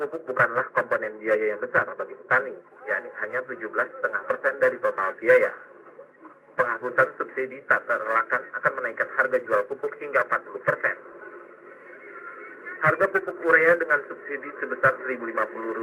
pupuk bukanlah komponen biaya yang besar bagi petani, yakni hanya 17,5% dari total biaya. Penghapusan subsidi tak terelakkan akan menaikkan harga jual pupuk hingga 40%. Harga pupuk urea dengan subsidi sebesar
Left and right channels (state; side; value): identical; both; correlation 1.00